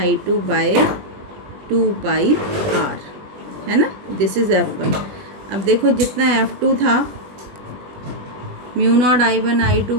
by 2πr, है ना, दिस इज़ F1। अब देखो जितना F2 था mu naught I1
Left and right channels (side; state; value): left; late; 20 ms